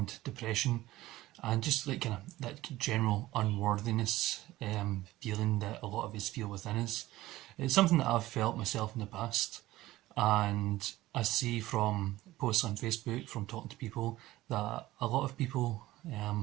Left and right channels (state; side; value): quieter; left; 16.8 dB